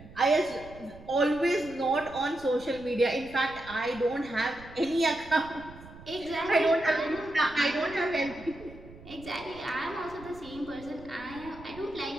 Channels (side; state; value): right; noise; rumble, 18 dB below the sound